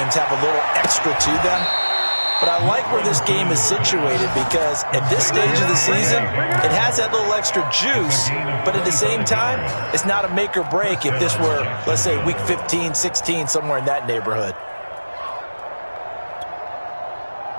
have a little extra to them. But I like where this game is situated, because at this stage of the season, it has that little extra juice, but at the same time, it's not a make or break if this were, let's say, week 15, 16, somewhere in that neighborhood.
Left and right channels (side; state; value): both; inverted; correlation -1.00